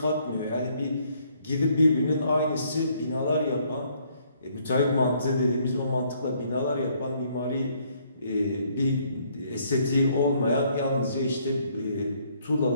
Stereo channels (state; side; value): inverted; both; correlation -0.67